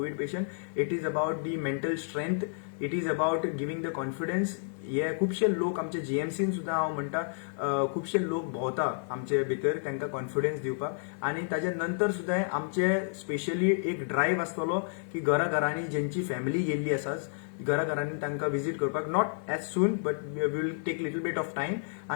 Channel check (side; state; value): right; silent; digital silence